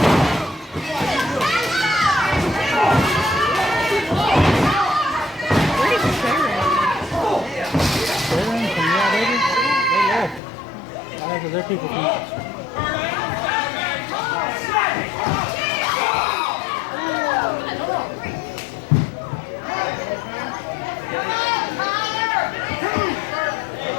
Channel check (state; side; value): drops out; right; at 10.4 s